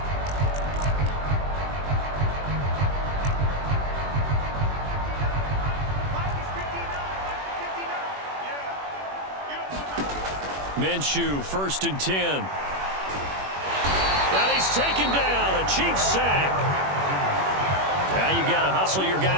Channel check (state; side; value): late; left; 21 ms